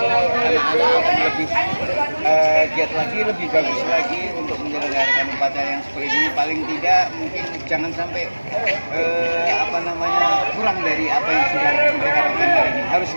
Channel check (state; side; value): inverted; both; correlation -1.00